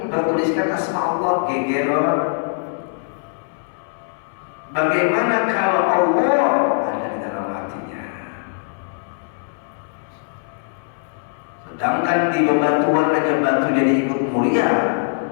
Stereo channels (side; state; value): right; silent; 65 dB below the other